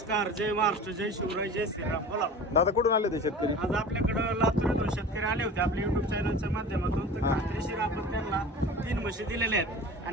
जय महाराष्ट्र, जय शिवराय, जय श्रीराम. बोला दादा कुठून आले ते शेतकरी? आज आपल्याकडं लातूर शेतकरी आले होते आपल्या युट्यूब चॅनलच्या माध्यमातून. तर खात्रीशीर आपण त्यांना 3 म्हशी दिलेल्या आहेत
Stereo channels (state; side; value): normal; both; correlation 0.38